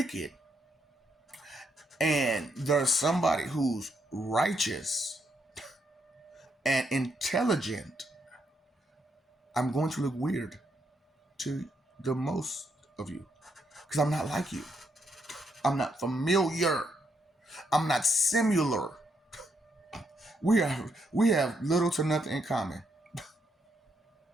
and there's somebody who's righteous and intelligent, I'm going to look weird to the most of you because I'm not like you. I'm not familiar. I'm not similar. We have little to nothing in common.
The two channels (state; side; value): normal; both; correlation 0.77